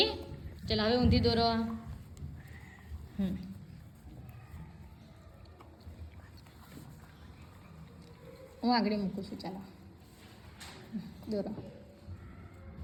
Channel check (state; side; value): identical; both; correlation 1.00